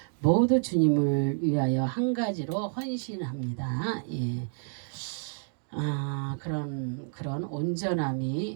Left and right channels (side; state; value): left; silent; 58 dB below the other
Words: 모두 주님을 위하여 한 가지로 헌신합니다. 예. 그런